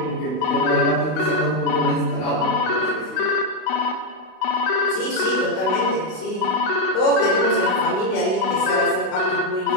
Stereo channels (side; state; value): right; late; 32 ms